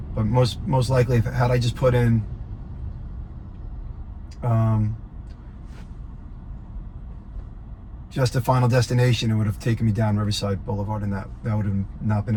But most likely, had I just put in just the final destination, it would have taken me down Riverside Boulevard, and that would have not been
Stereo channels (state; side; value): identical; both; correlation 1.00